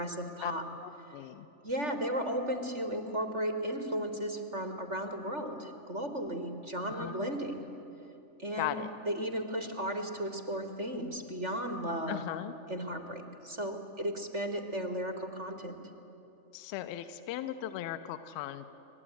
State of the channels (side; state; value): left; late; 3.4 ms